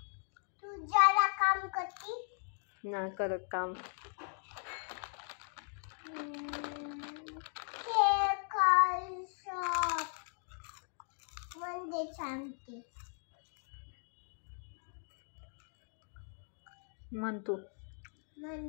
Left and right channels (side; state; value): right; silent; 52 dB below the other